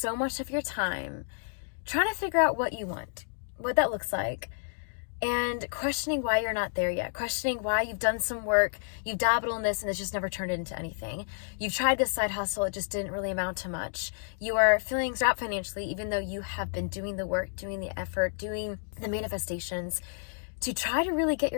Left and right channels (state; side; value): silent; right; digital silence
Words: much of your time trying to figure out what you want, what that looks like, and questioning why you're not there yet, questioning why you've done some work, you've dabbled in this and it's just never turned into anything. You've tried this side hustle, it just didn't really amount to much. You are feeling strapped financially, even though you have been doing the work, doing the effort, doing the manifestations to try to really get